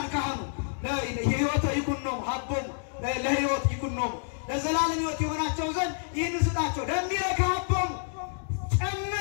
ካህኑ ለሕይወተ ይኩን ነው ሀቦሙ ለሕይወት ይኩን ነው ለዘላለም ሕይወት የሆናቸው ዘንድ ይህን ስጣቸው። ደምረ ከሀቦሙ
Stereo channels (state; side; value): silent; right; digital silence